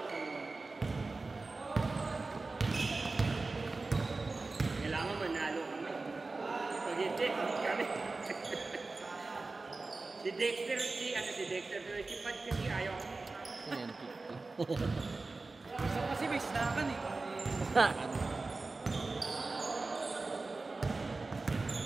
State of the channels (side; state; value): left; quieter; 3.6 dB